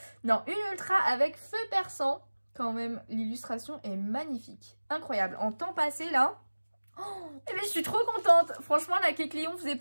Non, une ultra avec feu perçant. Quand même, l'illustration est magnifique. Incroyable. En temps passé, là... Oh, et ben, je suis trop contente. Franchement, la Kecléon faisait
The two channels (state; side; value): inverted; both; correlation -1.00